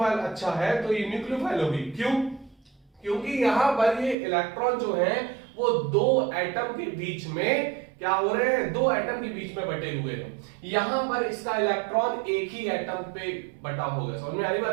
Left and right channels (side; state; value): left; drops out; at 4.2 s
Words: अच्छा है तो ये न्यूक्लियोफाइल होगी। क्यों? क्योंकि यहां पर ये इलेक्ट्रॉन जो है वो दो एटम के बीच में क्या हो रहे हैं, दो एटम के बीच में बटे हुए हैं। यहां पर इसका इलेक्ट्रॉन एक ही एटम पे बटा होगा, समझ में आ रही